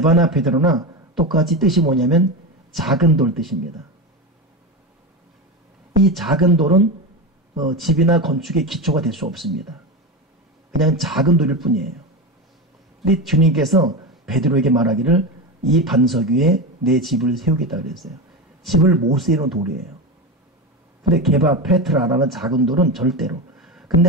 베드로나 똑같이 뜻이 뭐냐면 작은 돌 뜻입니다. 이 작은 돌은 집이나 건축의 기초가 될 수 없습니다. 그냥 작은 돌일 뿐이에요. 근데 주님께서 베드로에게 말하기를 이 반석 위에 내 집을 세우겠다 그랬어요. 집을 못 세우는 돌이에요. 근데 게바, 페트라라는 작은 돌은 절대로.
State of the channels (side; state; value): both; normal; correlation 0.19